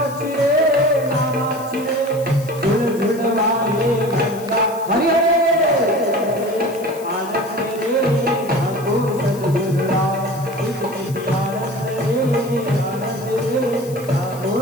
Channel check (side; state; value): left; noise; hiss, 19 dB below the sound